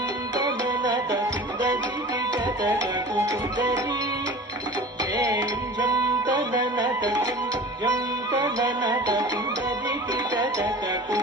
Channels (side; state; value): both; normal; correlation 0.38